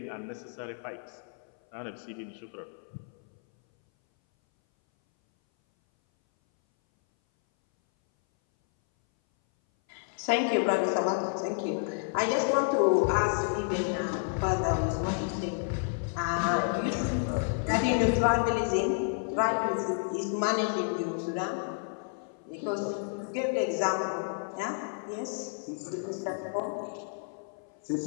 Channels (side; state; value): right; silent; 57 dB below the other